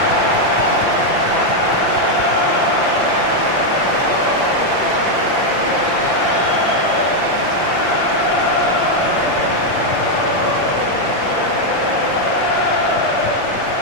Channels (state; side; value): late; right; 5.8 ms